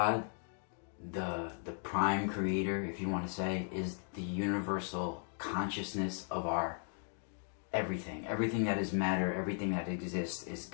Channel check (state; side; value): silent; right; 53 dB below the other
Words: the prime creator, if you want to say, is the universal consciousness of our everything. Everything that is matter, everything that exists is